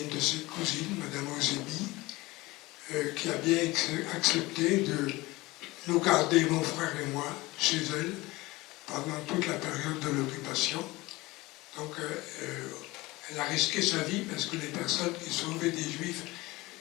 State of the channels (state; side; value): quieter; right; 20.8 dB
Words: une de ses cousines, Madame Ozebi, qui a bien accepté de nous garder, mon frère et moi, chez elle pendant toute la période de l'occupation. Donc elle a risqué sa vie parce que les personnes qui sauvaient des Juifs